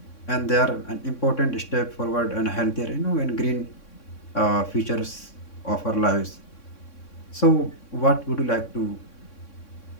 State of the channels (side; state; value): right; late; 3.6 ms